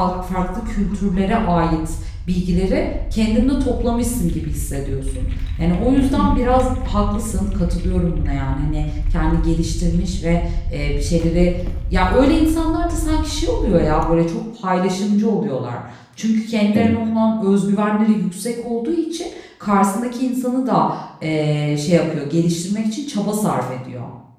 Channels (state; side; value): identical; both; correlation 1.00